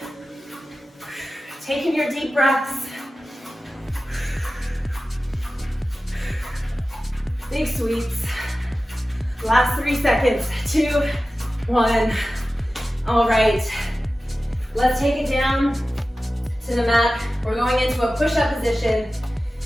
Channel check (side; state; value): both; normal; correlation 0.95